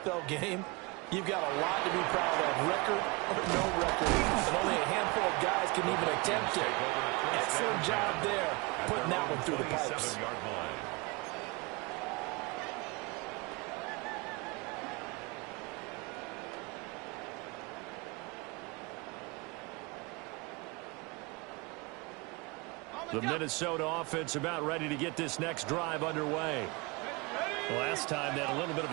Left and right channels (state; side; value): quieter; left; 26.4 dB